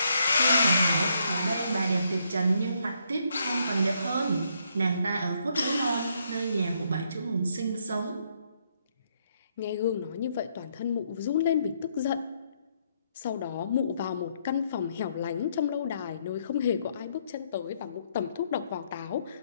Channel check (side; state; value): both; inverted; correlation -0.73